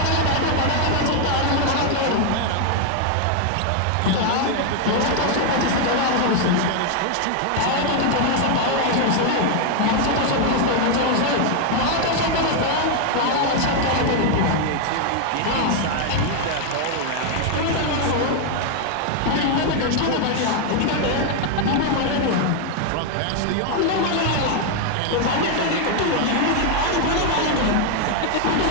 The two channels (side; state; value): both; different; correlation 0.00